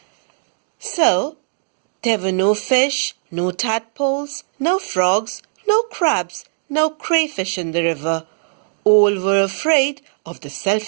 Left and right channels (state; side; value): silent; left; digital silence